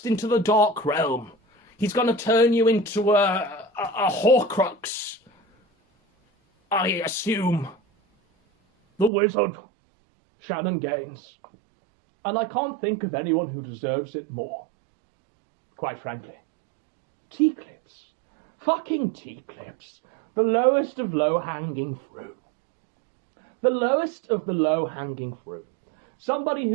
into the dark realm. He's going to turn you into a Horcrux. I assume. The wizard, Shannon Gaines. And I can't think of anyone who deserves it more. Quite frankly. Teaclips. Fucking Teaclips. The lowest of low-hanging fruit. The lowest of the low-hanging fruit. Somebody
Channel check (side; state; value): left; drops out; at 9.1 s